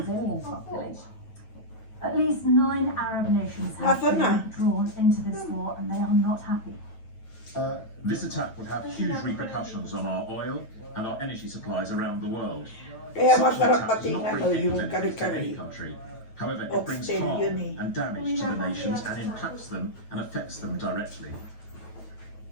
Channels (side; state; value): right; late; 9.1 ms